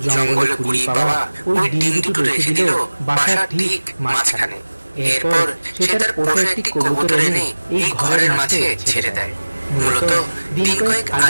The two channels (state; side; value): inverted; both; correlation -1.00